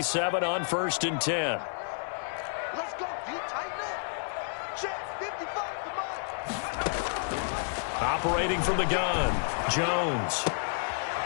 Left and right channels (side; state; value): right; silent; digital silence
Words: on 1st and 10. Let's go, D. Tighten up. Check 55 to mine. Operating from the gun, Jones.